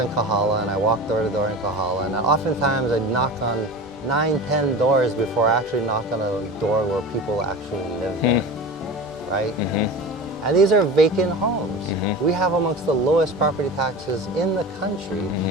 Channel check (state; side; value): normal; both; correlation 0.32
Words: Kahala, and I walk door to door in Kahala, and oftentimes I knock on 9, 10 doors before I actually knock on a door where people actually live there, right? And these are vacant homes. We have amongst the lowest property taxes in the country,